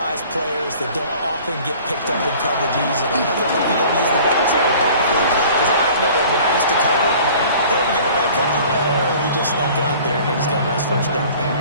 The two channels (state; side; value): inverted; both; correlation -0.48